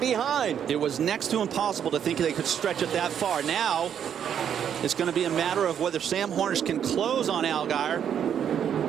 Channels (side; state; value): left; quieter; 8.7 dB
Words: It was next to impossible to think they could stretch it that far. Now it's going to be a matter of whether Sam Hornish can close on Allgaier